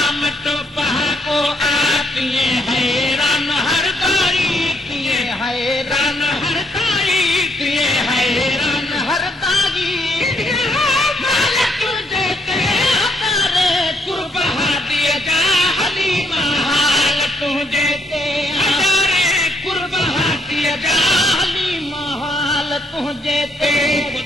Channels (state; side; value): normal; both; correlation 0.72